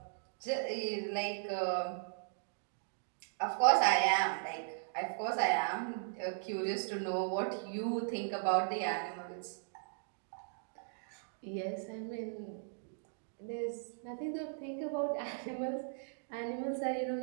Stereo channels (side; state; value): left; silent; digital silence